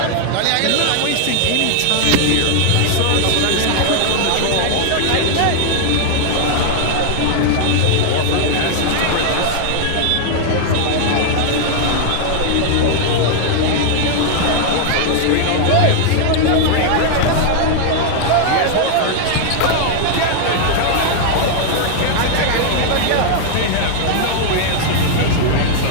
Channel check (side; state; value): both; different; correlation 0.00